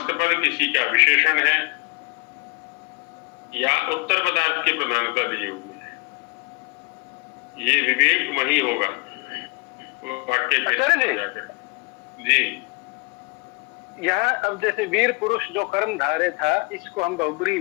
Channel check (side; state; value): right; quieter; 28.1 dB